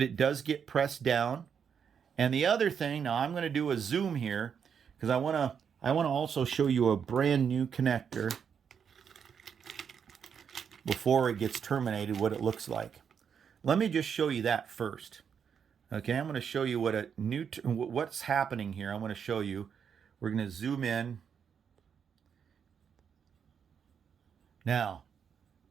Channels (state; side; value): quieter; left; 7.2 dB